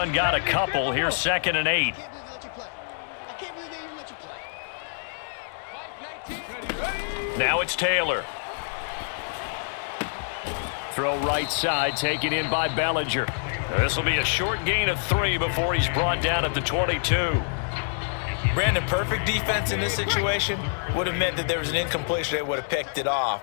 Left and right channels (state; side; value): silent; right; digital silence